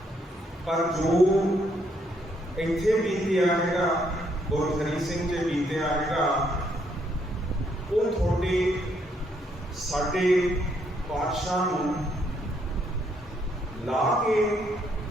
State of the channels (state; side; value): normal; both; correlation 0.72